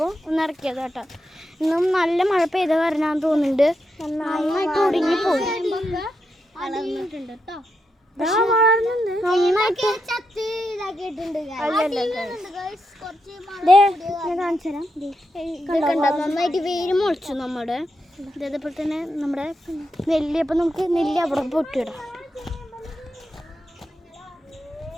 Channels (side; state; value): both; normal; correlation 0.84